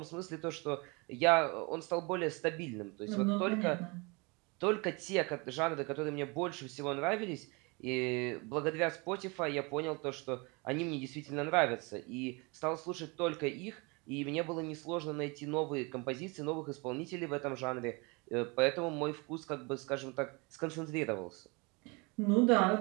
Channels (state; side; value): quieter; left; 28.4 dB